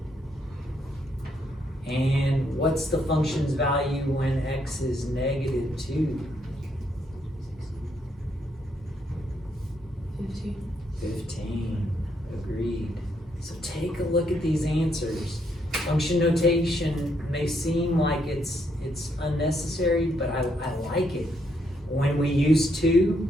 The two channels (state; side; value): normal; both; correlation 0.75